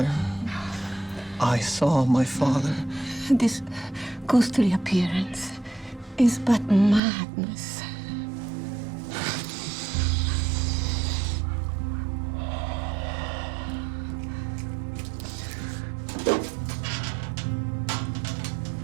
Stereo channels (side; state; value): left; drops out; at 7.0 s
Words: I saw my father. This ghostly appearance is but madness.